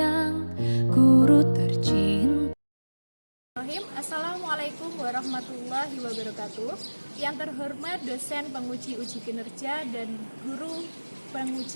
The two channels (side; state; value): both; inverted; correlation -1.00